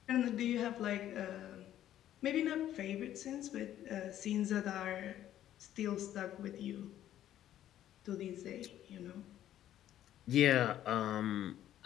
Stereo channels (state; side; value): quieter; right; 12.0 dB